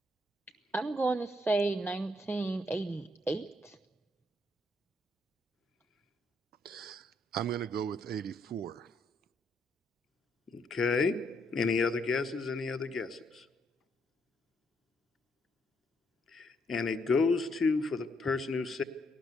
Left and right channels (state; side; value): normal; both; correlation 0.73